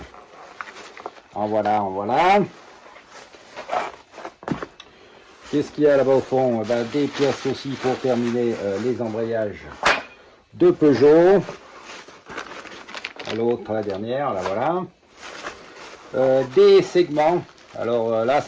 En voilà. Qu'est-ce qu'il y a là-bas au fond? Des pièces aussi pour terminer les embrayages de Peugeot. L'autre, la dernière, là voilà. Des segments. Alors là,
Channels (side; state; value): both; identical; correlation 1.00